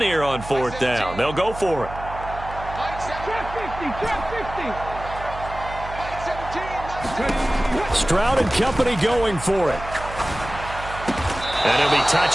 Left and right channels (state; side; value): noise; right; hum, 12 dB below the sound